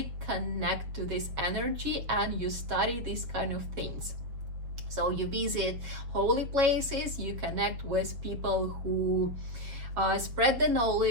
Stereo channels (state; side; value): late; left; 7.3 ms